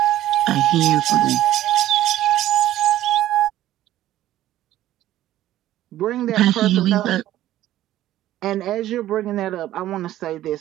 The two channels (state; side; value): quieter; left; 13.8 dB